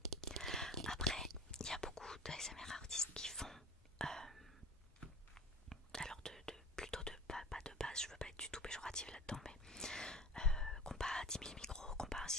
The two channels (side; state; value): both; normal; correlation 0.37